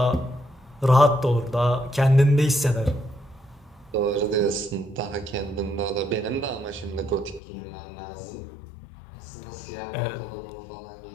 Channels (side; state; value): right; drops out; at 7.4 s